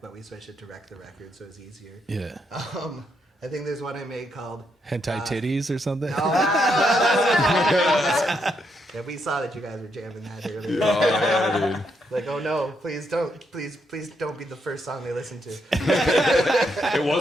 we switched it to Wreck the Record, so it's easier. Yeah. I think there's one I made called Hentai titties or something? Yeah, we saw that you guys were jamming that earlier. Oh yeah, dude. Like, oh no, please don't be the first song they listen to. It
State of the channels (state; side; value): normal; both; correlation 0.78